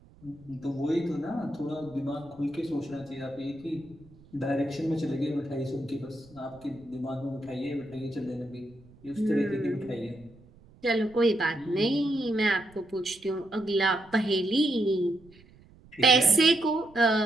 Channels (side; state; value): right; noise; rumble, 25 dB below the sound